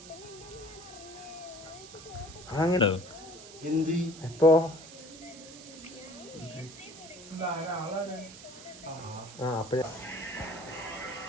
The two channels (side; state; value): right; noise; hiss, 16 dB below the sound